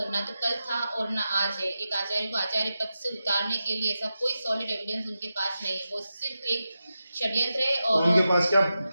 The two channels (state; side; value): inverted; both; correlation -0.91